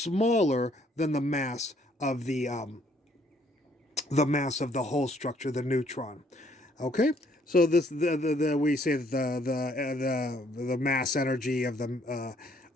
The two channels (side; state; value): both; normal; correlation 0.65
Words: than the mass of the mass of the whole structure, the neutron. Okay, so this we say that the mass energy of the